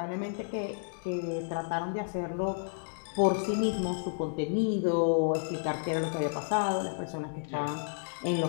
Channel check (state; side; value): silent; right; digital silence